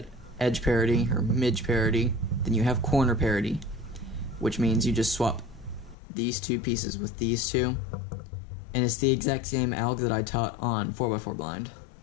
edge parity or midge parity, then you have corner parity, which means you just swap these 2 pieces with these 2, and it's the exact same alg that I taught on 4x4 blind.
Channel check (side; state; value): right; drops out; at 6.0 s